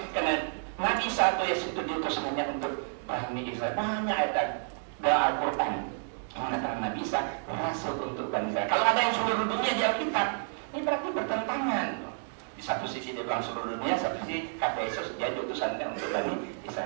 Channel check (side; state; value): left; silent; digital silence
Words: karena Nabi satu Yesus itu diutus hanya untuk Bani Israel. Banyak ayat dalam Al-Quran mengatakan Nabi Isa rasul untuk Bani Israel. Kalau ada yang seluruh dunia di Alkitab, ini berarti bertentangan. Di satu sisi dia bilang seluruh dunia, satu sisi kata Yesus dia diutusan untuk Bani